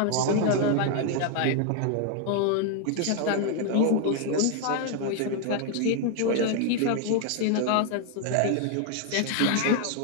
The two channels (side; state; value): both; different; correlation 0.01